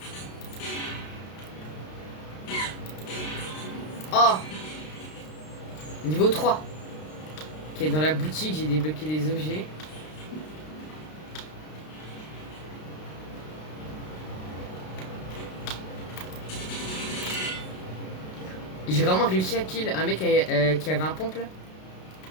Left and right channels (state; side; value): late; right; 32 ms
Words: Oh, niveau 3. Ok, dans la boutique, j'ai débloqué des objets. J'ai vraiment réussi à kill un mec qui avait un pompe là.